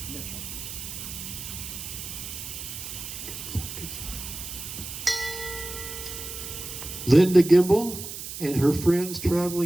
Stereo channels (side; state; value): right; noise; hiss, 8 dB below the sound